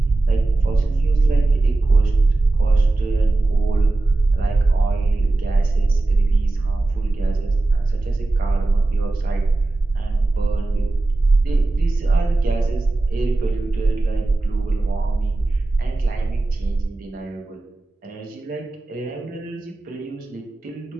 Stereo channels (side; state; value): left; quieter; 3.1 dB